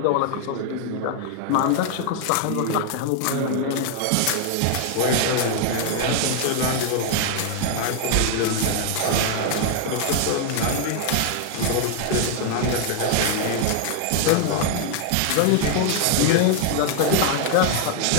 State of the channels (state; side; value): different; both; correlation 0.00